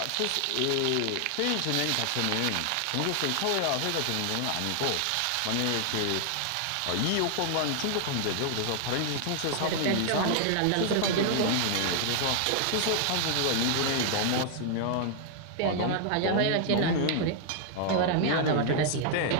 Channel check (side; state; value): both; different; correlation 0.00